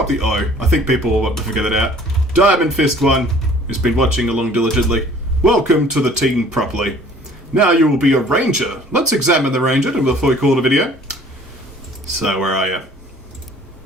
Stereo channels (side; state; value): both; normal; correlation 0.53